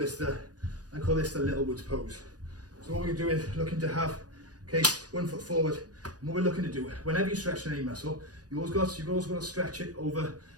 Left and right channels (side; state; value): left; late; 0.68 ms